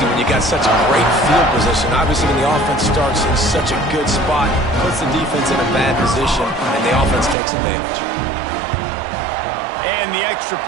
when you got such a great field position. Obviously, when the offense starts in such a good spot, puts the defense in a bad position, and the offense takes advantage. And the extra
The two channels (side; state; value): left; drops out; at 7.4 s